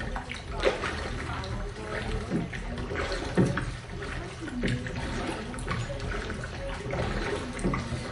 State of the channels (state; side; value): identical; both; correlation 1.00